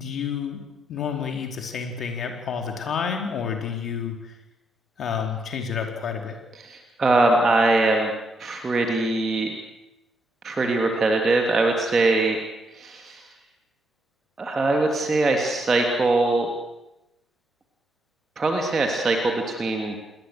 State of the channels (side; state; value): both; normal; correlation 0.78